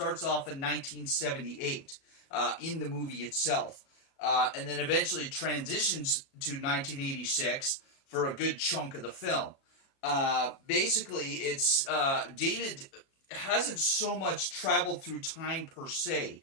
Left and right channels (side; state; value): right; late; 37 ms